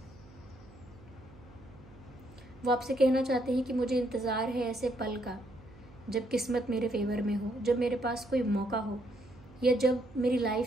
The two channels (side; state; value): right; noise; hum, 22 dB below the sound